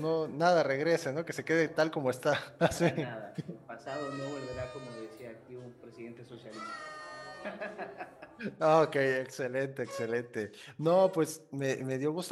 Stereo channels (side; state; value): both; identical; correlation 1.00